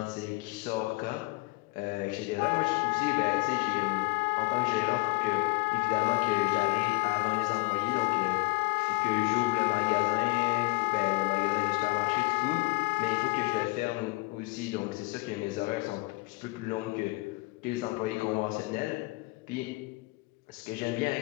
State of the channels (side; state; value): right; quieter; 25.2 dB